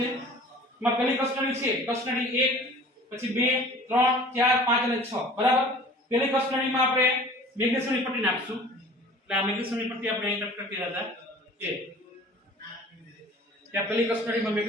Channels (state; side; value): normal; both; correlation 0.46